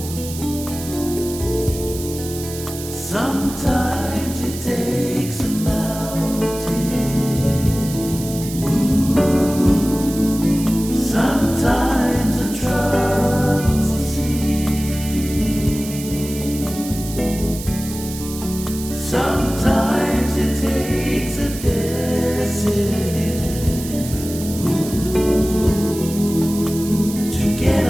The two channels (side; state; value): right; noise; hiss, 11 dB below the sound